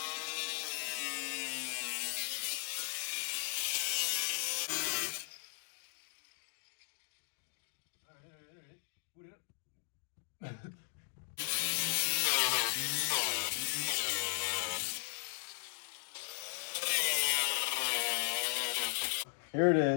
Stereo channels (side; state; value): right; silent; digital silence